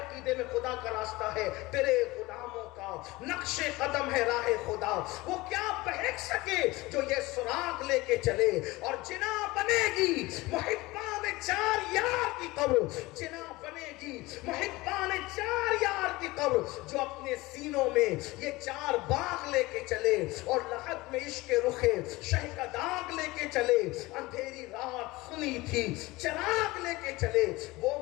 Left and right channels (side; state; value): right; quieter; 20.8 dB